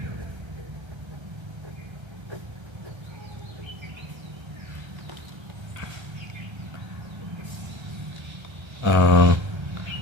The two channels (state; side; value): late; left; 1.3 ms